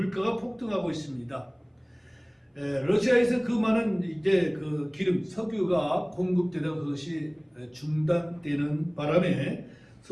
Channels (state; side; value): identical; both; correlation 1.00